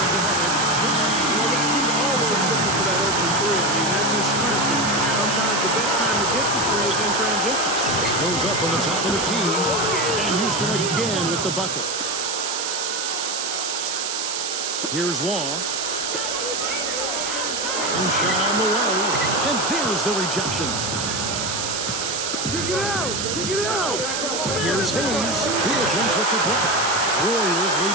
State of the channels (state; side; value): noise; right; hiss, 2 dB below the sound